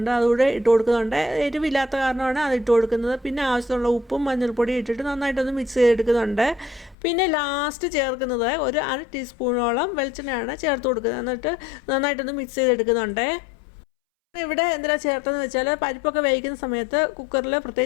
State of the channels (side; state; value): right; drops out; at 7.0 s